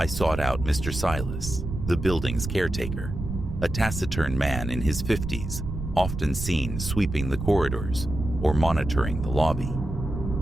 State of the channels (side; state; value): right; noise; rumble, 6 dB below the sound